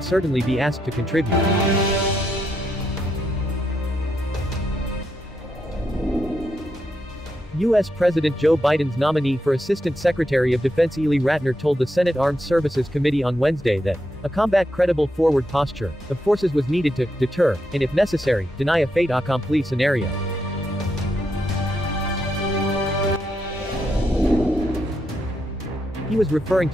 certainly be asked to contribute. U.S. President Joe Biden's nominee for Assistant Secretary of Defense Ely Ratner told the Senate Armed Services Committee on Wednesday that a combat credible forward posture of forces was needed to deter, and if necessary, deny a fait accompli scenario. He was referring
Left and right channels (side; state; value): both; normal; correlation 0.82